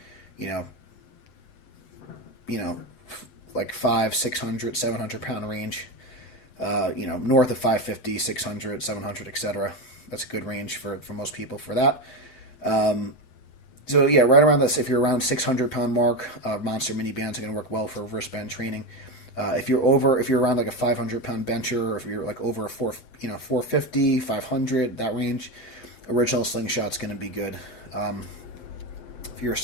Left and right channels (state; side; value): late; right; 7.8 ms